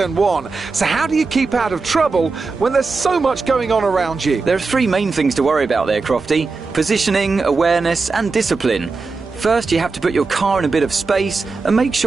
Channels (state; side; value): quieter; left; 4.2 dB